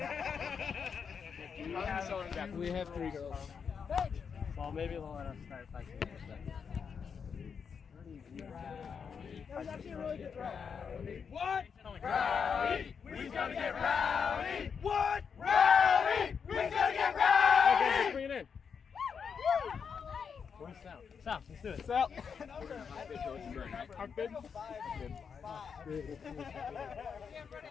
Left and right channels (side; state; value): right; quieter; 6.4 dB